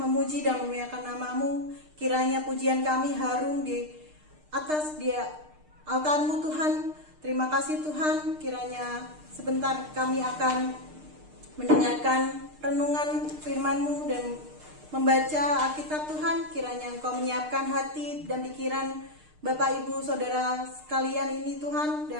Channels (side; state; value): left; late; 6.6 ms